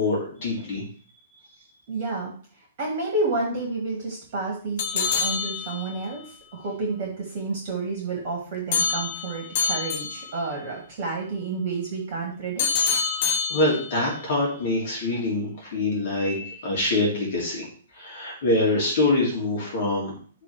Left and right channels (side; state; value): both; inverted; correlation -0.33